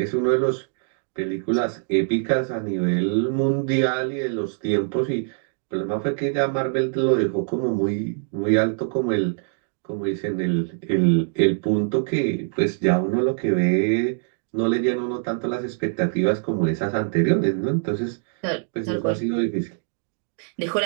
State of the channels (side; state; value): left; silent; digital silence